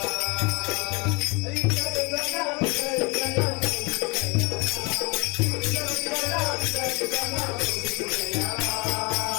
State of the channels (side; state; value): right; quieter; 28.7 dB